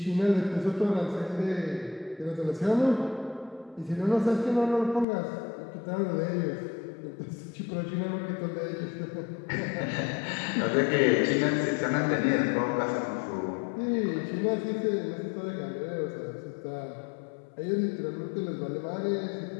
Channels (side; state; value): right; drops out; at 5.1 s